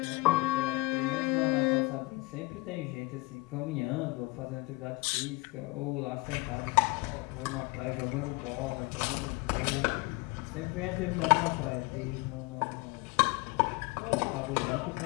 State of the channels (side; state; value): right; quieter; 24.2 dB